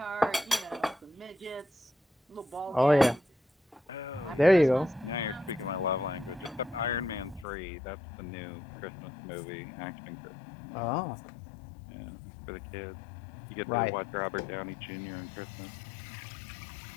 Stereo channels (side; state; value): right; drops out; at 7.5 s